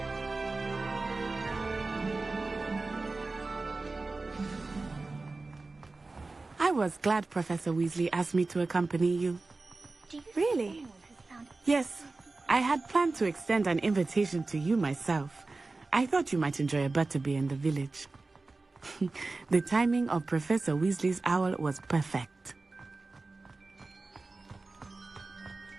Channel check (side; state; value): left; quieter; 3.5 dB